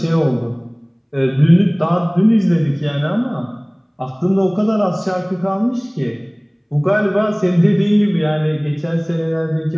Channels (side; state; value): both; identical; correlation 1.00